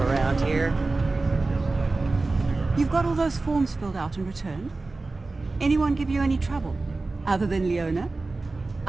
here. You've got all those forms filled out and returned? Anyone give you any trouble? Other than Leona?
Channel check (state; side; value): quieter; left; 3.4 dB